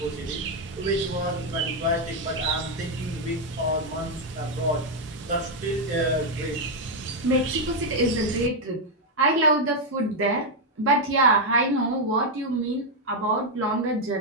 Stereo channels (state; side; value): normal; both; correlation 0.01